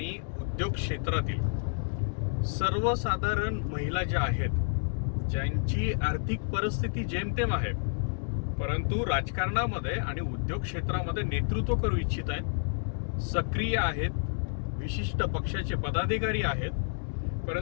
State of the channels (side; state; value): right; silent; digital silence